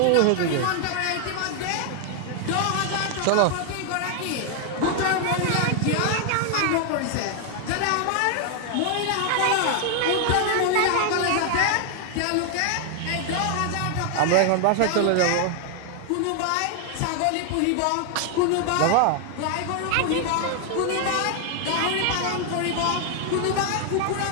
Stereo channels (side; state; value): both; different; correlation 0.00